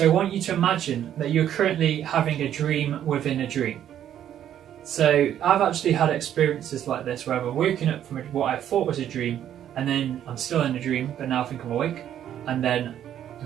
I want you to imagine that you're currently having a dream within a dream. So I've actually had experiences like this where I've woken up from what I thought was a dream, and then I'm still in a dream, but now I think I'm awake, and then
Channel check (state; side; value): quieter; left; 10.5 dB